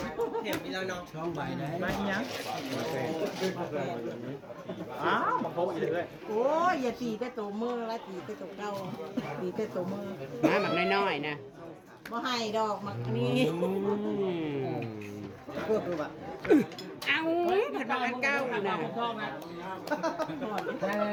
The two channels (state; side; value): identical; both; correlation 1.00